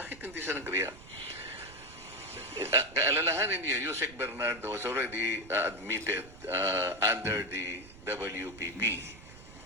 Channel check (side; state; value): right; noise; rumble, 19 dB below the sound